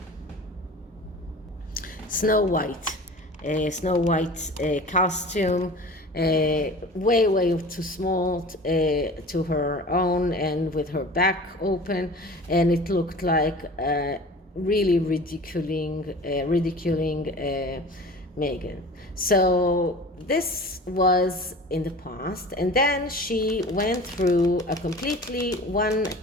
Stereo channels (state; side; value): normal; both; correlation 0.40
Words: Snow White costume. Way too small to her own, and with her back open, and it looked like really ridiculing Meghan. So this was in the past, and then she went through a completely